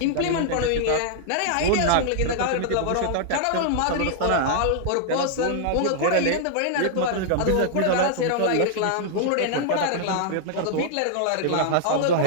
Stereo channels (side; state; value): both; different; correlation -0.01